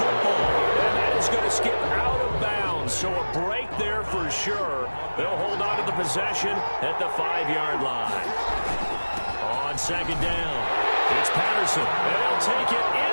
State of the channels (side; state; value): both; inverted; correlation -1.00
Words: football. And that is going to skip out of bounds, so a break there for sure. They'll hold on to the possession at the 5-yard line. On second down, it's Patterson. And they'll take it